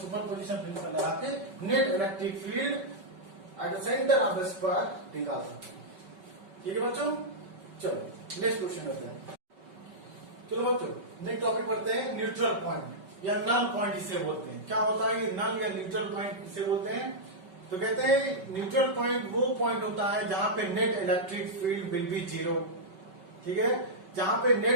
पोजिशन प्रिंसिपल लगा के net electric field at the centre of the square निकाल सकते हैं। ठीक है बच्चों, चलो नेक्स्ट क्वेश्चन करते हैं। चलो बच्चों नेक्स्ट टॉपिक पढ़ते हैं, न्यूट्रल पॉइंट या नल पॉइंट इसे बोलते हैं। क्या होता है ये नल या न्यूट्रल पॉइंट इसे बोलते हैं? तो कहते हैं न्यूट्रल पॉइंट वो पॉइंट होता है जहां पे net electric field will be zero. ठीक है, जहां पे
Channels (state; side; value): late; left; 5.3 ms